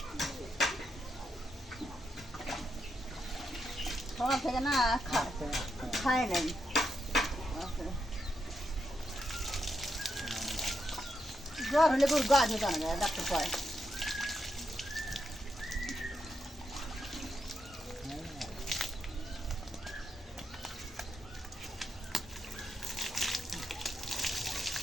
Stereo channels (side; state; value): both; normal; correlation 0.83